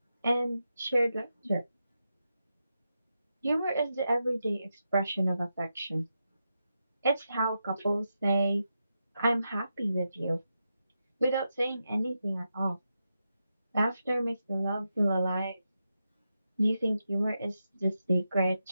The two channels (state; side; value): inverted; both; correlation -0.87